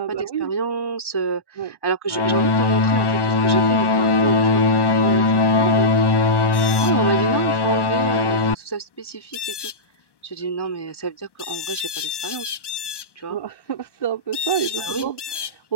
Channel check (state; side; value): late; right; 1.1 ms